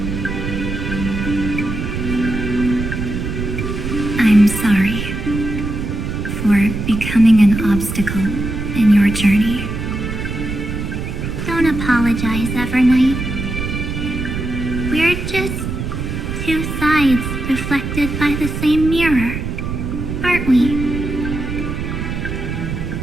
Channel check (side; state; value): right; noise; rumble, 4 dB below the sound